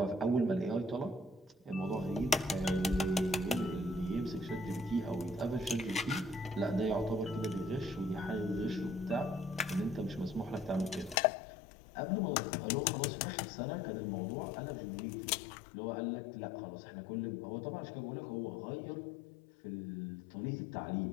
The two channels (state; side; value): drops out; right; at 11.2 s